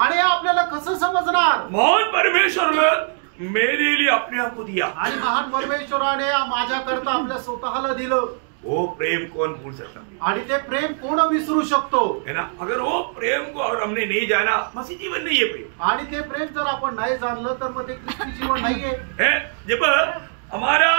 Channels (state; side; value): silent; left; digital silence